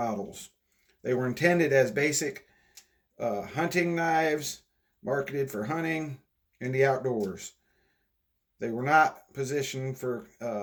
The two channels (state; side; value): identical; both; correlation 1.00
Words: They were intended as basic hunting knives, marketed for hunting and the outdoors. They were not positioned for